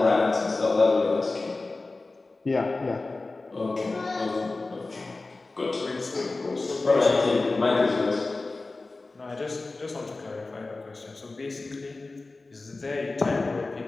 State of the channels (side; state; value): right; quieter; 3.4 dB